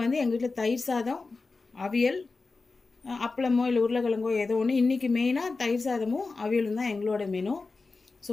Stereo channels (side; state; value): right; quieter; 3.9 dB